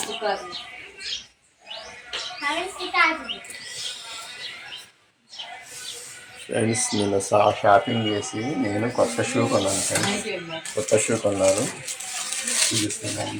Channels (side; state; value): both; identical; correlation 1.00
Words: ఫ్రెండ్స్ నిన్న షాపింగ్ చేసి నేను కొత్త షూ కొన్నాను ఫ్రెండ్స్. కొత్త షూ కొన్నాను,